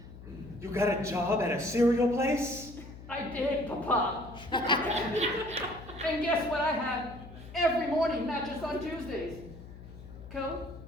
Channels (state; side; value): noise; left; hum, 15 dB below the sound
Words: You got a job at a cereal place? I did, Papa. And guess what I have every morning, not just on Tuesdays? Go,